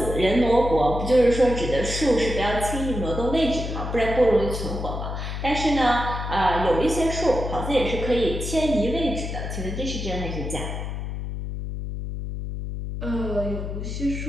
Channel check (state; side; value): noise; left; hum, 5 dB below the sound